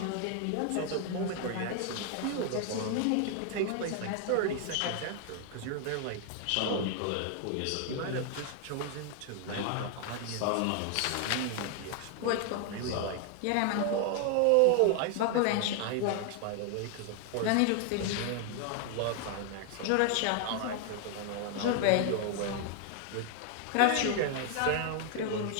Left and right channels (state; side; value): different; both; correlation 0.00